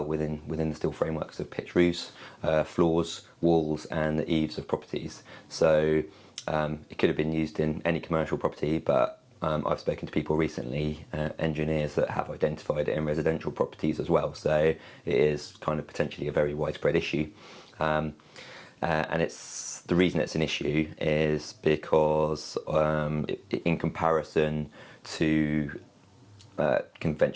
within the steel frameworks of pitched roofs, floors, walls, and the eaves of properties. So it could have been used in any commercial property, but I've spoken to people recently, engineers, that have identified it in residential properties as well. So it is kind of potentially a very widespread issue. And the reason it's an issue is because in comparison to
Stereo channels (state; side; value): identical; both; correlation 1.00